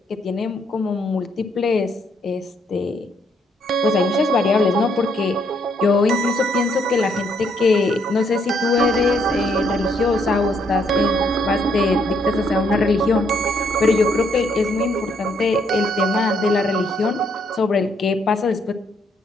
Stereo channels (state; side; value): normal; both; correlation 0.71